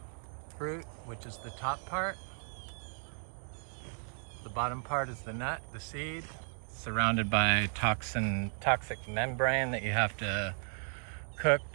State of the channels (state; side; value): silent; left; 54 dB below the other